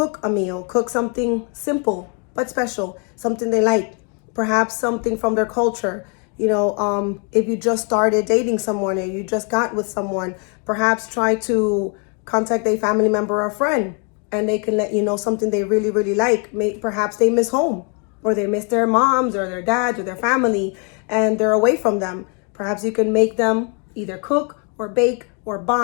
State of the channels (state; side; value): quieter; right; 37.4 dB